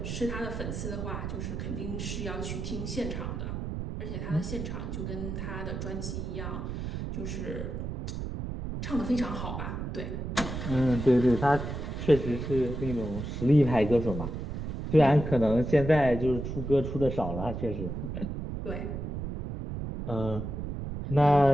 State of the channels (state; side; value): noise; right; rumble, 5 dB below the sound